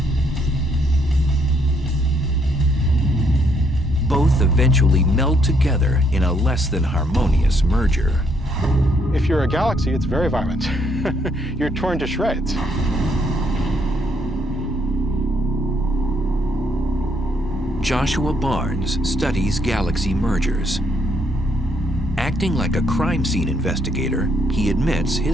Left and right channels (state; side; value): normal; both; correlation 0.71